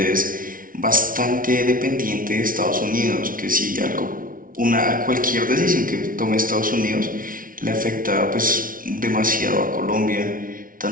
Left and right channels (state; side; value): late; left; 0.40 ms